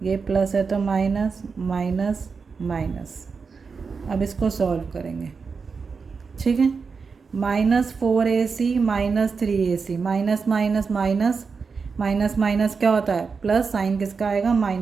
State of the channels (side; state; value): left; quieter; 5.1 dB